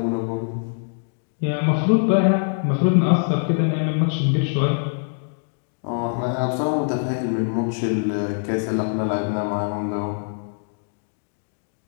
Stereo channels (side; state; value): right; silent; digital silence